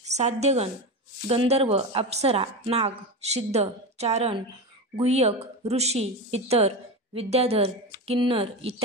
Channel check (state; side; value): normal; both; correlation 0.20